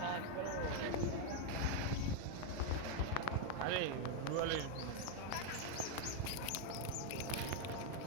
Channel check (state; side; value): different; both; correlation 0.01